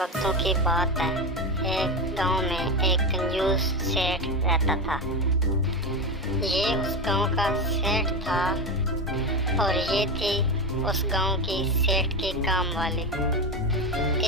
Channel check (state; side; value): normal; both; correlation 0.18